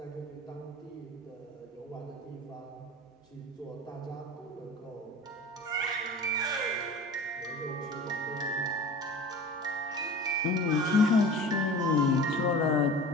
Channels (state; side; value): normal; both; correlation 0.38